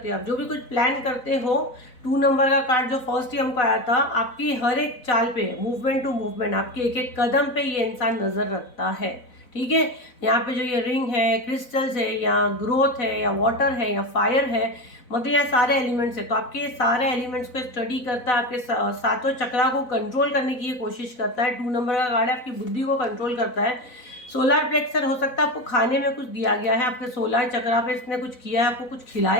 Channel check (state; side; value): late; right; 4.0 ms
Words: हो, आप जो भी कुछ प्लान करते हो, 2 नंबर का कार्ड जो फर्स्ट ही हमको आया था, आपकी हर एक चाल पे, मूवमेंट टू मूवमेंट, आपके एक एक कदम पे ये इंसान नजर रखता है, ठीक है। यहाँ पे जो ये रिंग है, क्रिस्टल्स है, या ग्रोथ है, या वाटर है, या फायर है, मतलब यहाँ सारे एलिमेंट्स है। तो आपके ये सारे एलिमेंट्स को स्टडी करता है, आपके सातों चक्रा को कंट्रोल करने की ये कोशिश करता है। 2 नंबर का कार्ड है, आपकी बुद्धि को कंट्रोल करता है। सोलर प्लेक्सर हो सकता है आपको खाने में कुछ दिया गया है, आपके सोलर चक्रा पे इसने कुछ किया है, आपको कुछ